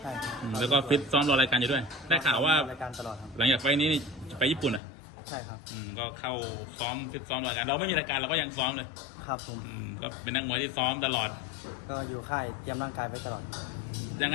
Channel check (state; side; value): drops out; right; at 4.8 s